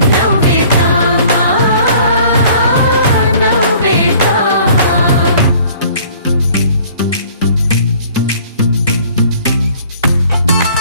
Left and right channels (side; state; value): both; inverted; correlation -0.53